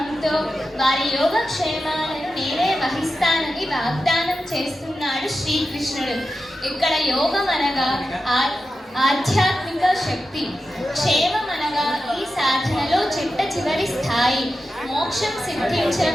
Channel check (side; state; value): both; normal; correlation 0.91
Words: వారి యోగక్షేమాలను నేనే వహిస్తానని వాగ్దానం చేస్తున్నాడు శ్రీకృష్ణుడు. ఇక్కడ యోగం అనగా ఆధ్యాత్మిక శక్తి, క్షేమం అనగా ఈ సాధనలో చిట్ట చివరి స్థాయి, మోక్షం సిద్ధించిన